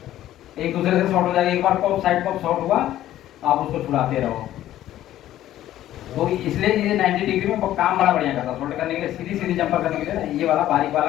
एक दूसरे से शॉर्ट हो जाएगा। एक बार कोक साइड कोक शॉर्ट हुआ, आप उसको छुड़ाते रहो। तो इसलिए ये 90 डिग्री में काम बड़ा बढ़िया करता है। शॉर्ट करने के लिए, सीधी सीधी जंपर करने के लिए ना, ये वाला बारीक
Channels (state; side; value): quieter; right; 13.2 dB